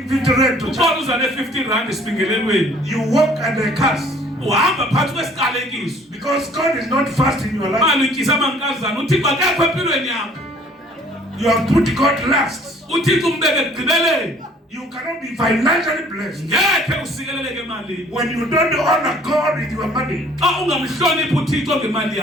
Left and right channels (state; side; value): normal; both; correlation 0.55